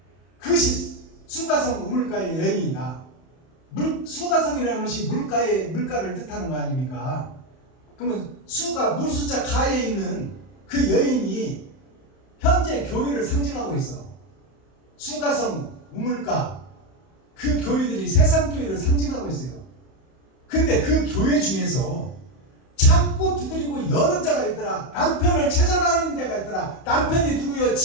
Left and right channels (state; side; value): late; right; 31 ms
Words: 그것이 수가성 우물가의 여인이다. 수가성이라는 것이 물가를 뜻하는 거 아닙니까? 그러면 수가 물숫자 가에 있는 그 여인이 현재 교회를 상징하고 있어. 수가성 우물가 그 교회들이 세상 교회를 상징하고 있어요. 근데 그 교회 중에서 찾고 두드리고 여는 자가 있더라. 남편을 찾아다니는 자가 있더라. 남편이 누구요?